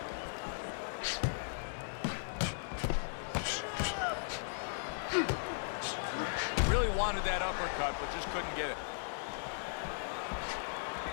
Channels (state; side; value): silent; right; digital silence